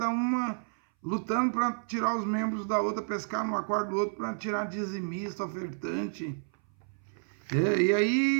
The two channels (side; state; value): left; silent; 58 dB below the other